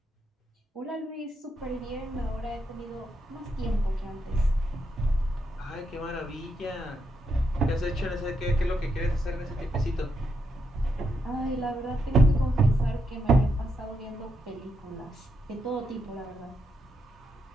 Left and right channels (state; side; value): normal; both; correlation 0.81